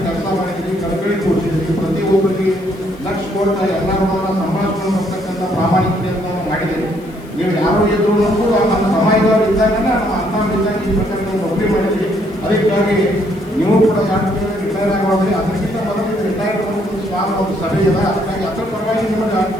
ಕೆಲಸ ಮಾಡಿದ್ದೀವಿ, ಕಳಕಳಿ ಕೊಡ್ತಿದ್ದೀವಿ. ಪ್ರತಿಯೊಬ್ಬರಿಗೆ ಲಕ್ಷ ಕೋಟಿ ಎಲ್ಲರನ್ನ ಸಂಭಾಷಣೆ ಬರ್ತಕ್ಕಂಥ ಪ್ರಾಮಾಣಿಕತೆಯನ್ನು ನಾವು ಮಾಡಿದ್ದೀವಿ. ನೀವು ಯಾರು ಇದ್ರು ನಮ್ಮ ಸಮಾಜದವರು ಇದ್ದಾಗ ನಮ್ಮ ಅರ್ಥವಿದ್ದಾಗ ಈ ಪ್ರಕಾರ ನೌಕರಿ ಮಾಡಿದ್ವಿ. ಅದಕ್ಕಾಗಿ ನೀವು ಕೂಡ 2 ತಿಂಗಳು ರಿಟೈರ್ ಆಗೋದ್ರಿ. ಅದಕ್ಕಿಂತ ಮೊದಲು ರಿಟೈರ್ ಒಂದು ಸಭೆ ಇದೆ. ಅದಕ್ಕಾಗಿ ಅದರ ಪರವಾಗಿ ನಿಮಗೆ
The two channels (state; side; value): noise; left; hiss, 27 dB below the sound